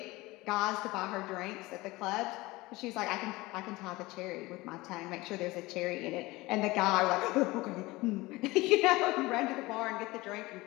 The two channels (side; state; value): right; quieter; 20.8 dB